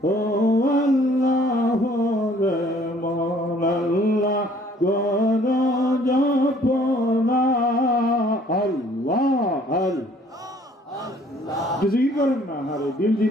ও আল্লাহ রে মন আল্লাহ গণ জপনা। আল্লাহ আল্লাহ কিছুই করেন না, আরে দিল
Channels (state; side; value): normal; both; correlation 0.58